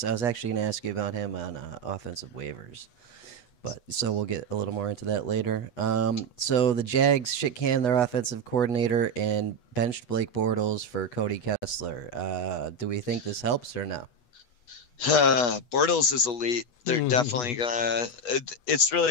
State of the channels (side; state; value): right; late; 8.2 ms